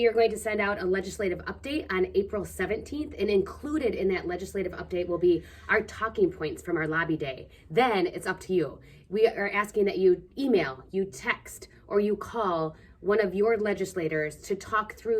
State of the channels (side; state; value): both; identical; correlation 1.00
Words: are going to send out a legislative update on April 17th, and included in that legislative update will be our talking points from our lobby day. Then it's up to you. We are asking that you email, you text, or you call one of your legislators to talk